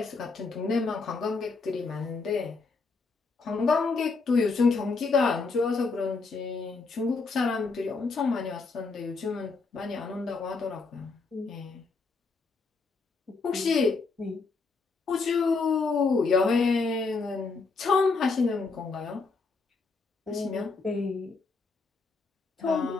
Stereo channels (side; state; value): right; quieter; 4.2 dB